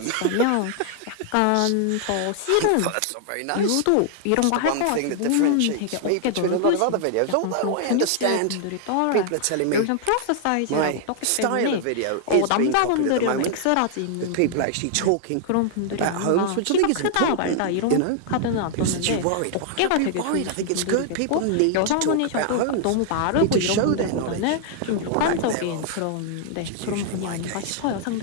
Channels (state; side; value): different; both; correlation 0.00